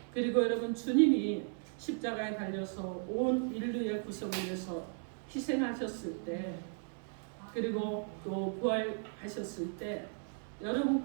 그리고 여러분 주님이 십자가에 달려서 온 인류의 구속을 위해서 희생하셨을 때 그리고 또 부활하셨을 때 여러분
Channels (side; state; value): left; silent; 54 dB below the other